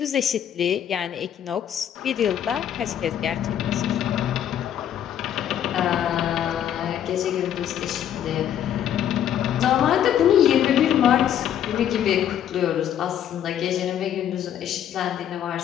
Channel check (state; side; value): quieter; right; 10.1 dB